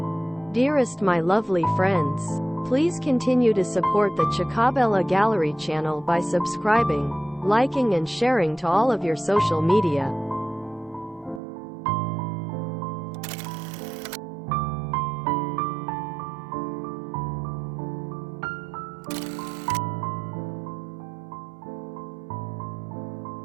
Dearest my lovely friends, please continue to support the Chacabella Gallery channel by subscribing, liking and sharing to all of your social media.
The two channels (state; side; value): drops out; left; at 11.4 s